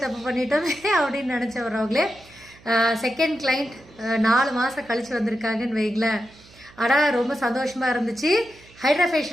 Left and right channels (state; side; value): noise; right; hum, 25 dB below the sound